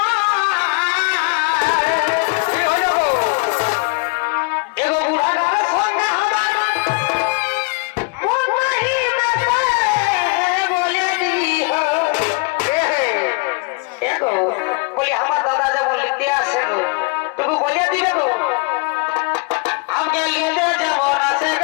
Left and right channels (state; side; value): quieter; right; 31.0 dB